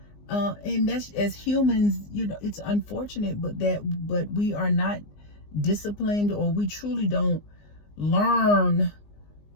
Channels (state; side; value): late; right; 19 ms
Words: that's, as humans, it's unfortunate, but we are not disciplined, or we truly don't learn